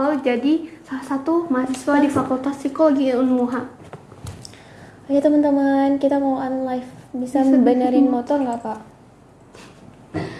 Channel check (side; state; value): both; identical; correlation 1.00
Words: jadi salah satu mahasiswa di Fakultas Psikologi UMUHA. Ayo teman-teman, kita mau unlive. Bisa benerin motor nggak Kak?